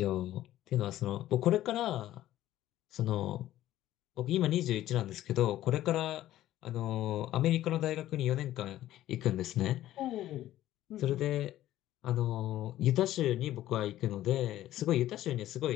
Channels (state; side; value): quieter; right; 13.8 dB